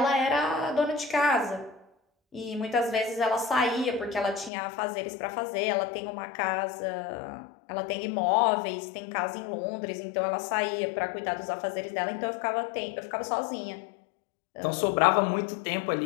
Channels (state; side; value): drops out; right; at 4.5 s